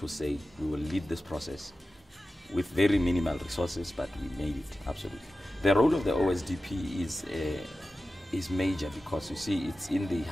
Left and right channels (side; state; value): both; normal; correlation 0.94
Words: say we will lead this process with very minimal resources, but we made it, absolutely. The role of the OSDP is major because, you see, it's in the